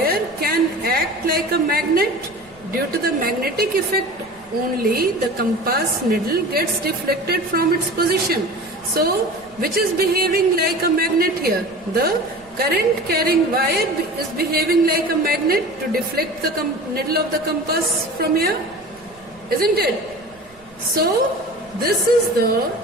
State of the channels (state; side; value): noise; right; rumble, 27 dB below the sound